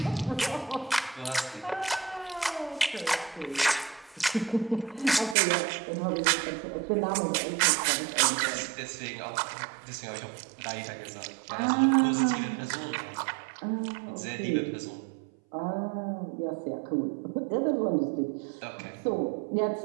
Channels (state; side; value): drops out; left; at 5.4 s